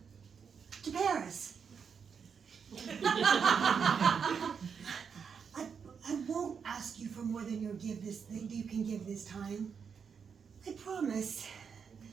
to Paris. I won't ask you for more than you can give this time. I promise.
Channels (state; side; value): quieter; left; 6.5 dB